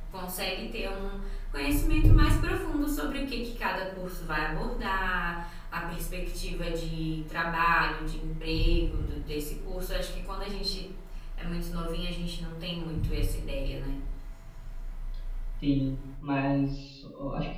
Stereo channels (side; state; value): both; identical; correlation 1.00